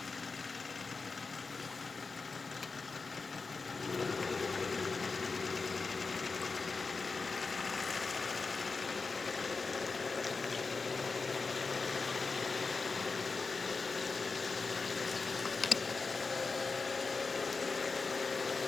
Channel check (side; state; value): right; quieter; 4.3 dB